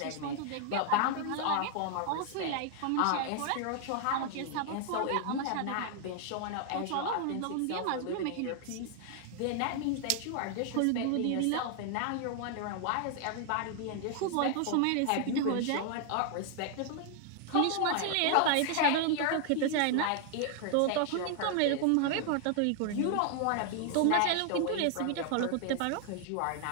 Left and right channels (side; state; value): both; different; correlation 0.00